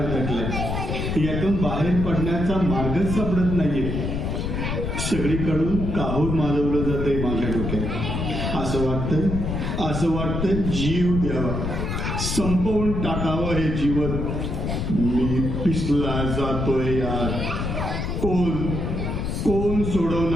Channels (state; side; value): noise; left; rumble, 2 dB below the sound